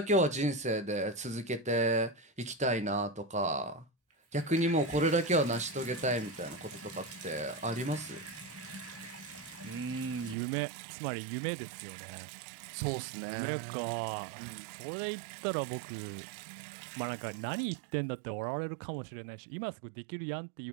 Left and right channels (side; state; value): left; drops out; at 10.4 s